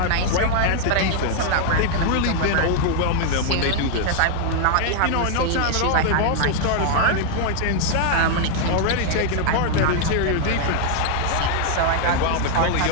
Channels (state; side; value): different; both; correlation 0.00